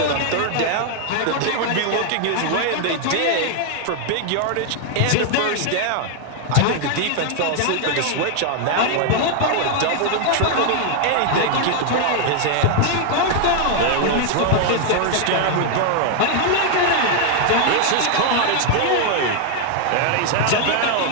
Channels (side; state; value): both; different; correlation 0.00